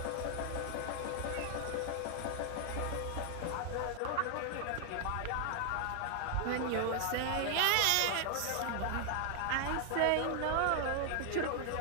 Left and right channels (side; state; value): both; different; correlation 0.00